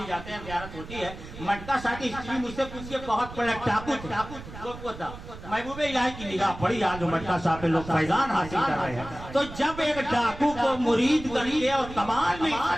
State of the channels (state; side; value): noise; right; rumble, 13 dB below the sound